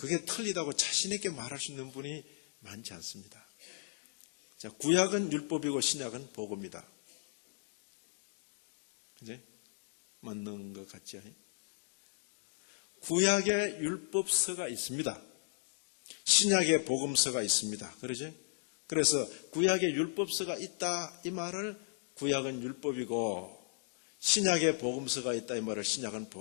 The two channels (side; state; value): right; silent; digital silence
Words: 틀리다고 자신있게 말할 수 있는 분이 많지 않습니다. 자, 구약은 율법이고 신약은 복음이다. 그지? 맞는 것 같지? 구약에 율법서가 있습니다. 신약에 복음서가 있습니다. 그러지? 그래서 구약에 율법서가 있다 이 말을 구약은 율법이고 신약에 복음서가 있다 이 말을 신약은